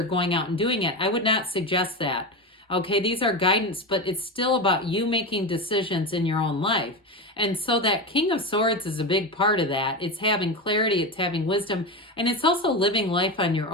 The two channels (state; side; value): normal; both; correlation 0.19